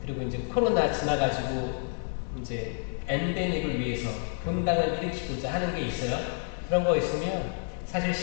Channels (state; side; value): silent; right; 55 dB below the other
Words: 그리고 이제 코로나 지나가지고 이제 엔데믹을 위해서 본당을 일으키고자 하는 게 있어요. 그런 거 있으면 사실